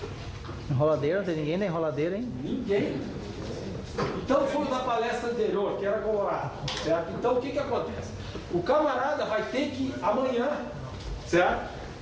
Enroladeira, não tem ninguém da enroladeira, hein? Ninguém. Então foi da palestra anterior, que era colorado, certo? Então o que acontece? O camarada vai ter que, amanhã, certo?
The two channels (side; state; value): both; identical; correlation 1.00